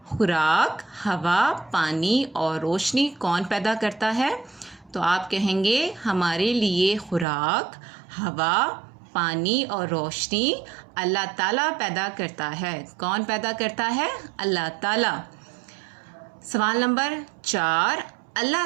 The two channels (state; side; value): drops out; left; at 7.2 s